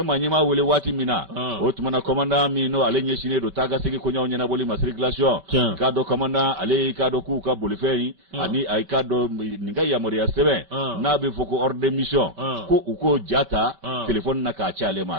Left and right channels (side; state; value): left; late; 5.2 ms